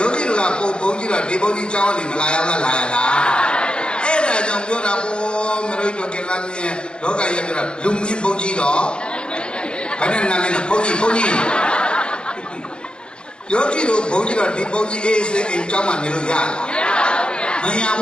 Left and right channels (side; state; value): right; late; 0.052 ms